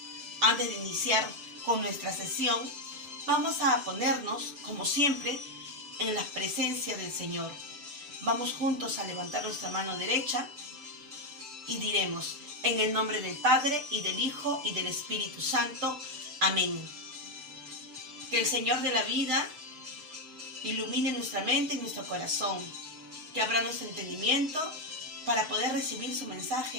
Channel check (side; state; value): left; late; 6.8 ms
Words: Antes de iniciar con nuestra sesión, vamos a ponernos, como siempre, en la presencia del Señor. Vamos juntos a levantar nuestra mano derecha y diremos, en el nombre del Padre, y del Hijo, y del Espíritu Santo. Amén. Que el Señor de la vida ilumine nuestra mente y nuestro corazón, que abra nuestro entendimiento para poder recibir su